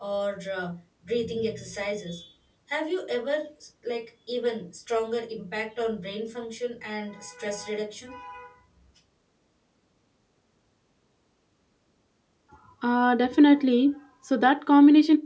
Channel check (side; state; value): both; identical; correlation 1.00